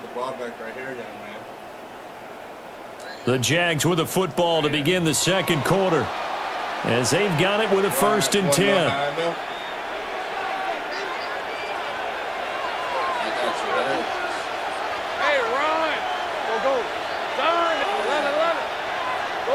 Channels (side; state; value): both; identical; correlation 1.00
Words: the ball back right here, young man. The Jags with a football to begin the second quarter, as they've got it with a first and 10. Hey, Ron. Go. Darn it. Love it. Go.